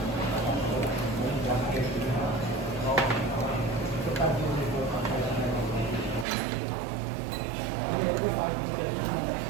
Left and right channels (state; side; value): drops out; left; at 6.2 s